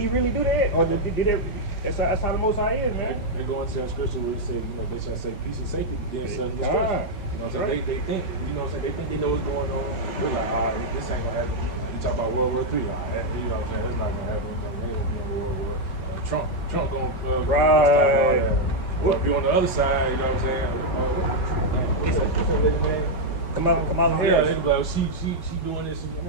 really do that, or did that? That's how the Most High is, man. They go into that scripture where it say, you know, they shall say peace and safety, then sudden destruction. You know what I'm saying? They think, you know what I'm saying? They think they know what's going on. They're like, this ain't gonna happen. Like, you talk about World War III, you know what I'm saying? That's not gonna happen. They ain't gonna be on World War. Trump gonna stop all that. Well, if you're on the other side, you know what I'm saying? What's that lady's name? Kamala Harris. Yeah, they be like, she doing this.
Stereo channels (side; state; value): right; late; 4.7 ms